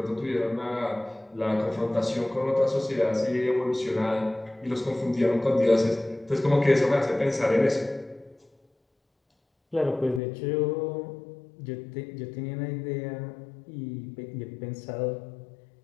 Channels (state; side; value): drops out; right; at 10.2 s